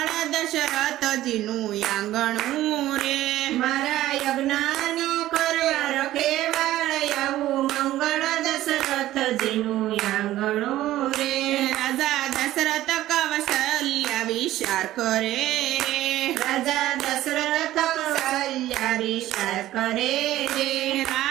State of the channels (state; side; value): quieter; left; 14.6 dB